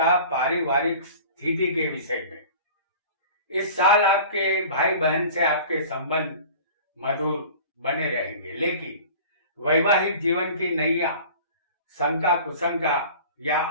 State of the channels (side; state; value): both; inverted; correlation -0.41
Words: पारिवारिक स्थिति के विषय में। इस साल आपके भाई बहन से आपके संबंध मधुर बने रहेंगे, लेकिन वैवाहिक जीवन की नैया शंका कुशंका या